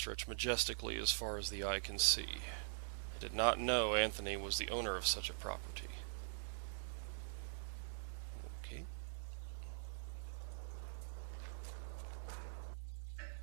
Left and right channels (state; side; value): silent; left; digital silence